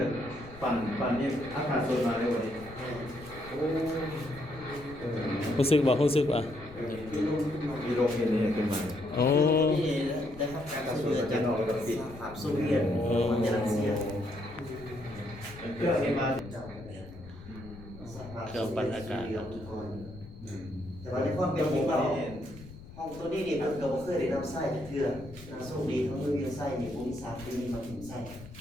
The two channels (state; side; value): noise; left; rumble, 16 dB below the sound